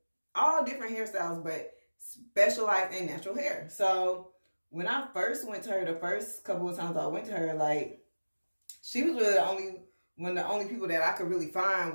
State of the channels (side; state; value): both; inverted; correlation -1.00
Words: different hairstyles, but specialized in natural hair. So when I first went to her, the first couple of times I went to her, like, she was really one of the only people that I could really find